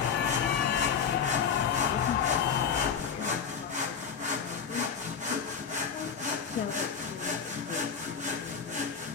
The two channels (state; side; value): quieter; right; 6.7 dB